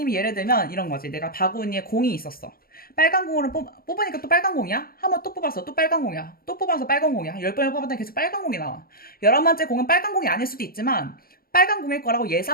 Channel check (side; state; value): right; late; 0.43 ms